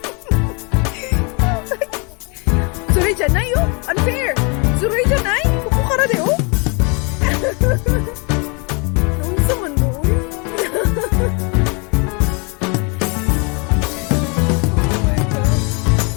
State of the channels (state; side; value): quieter; right; 32.6 dB